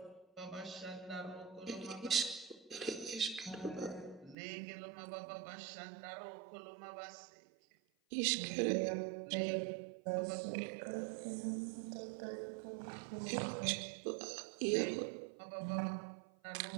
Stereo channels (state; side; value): drops out; left; at 4.4 s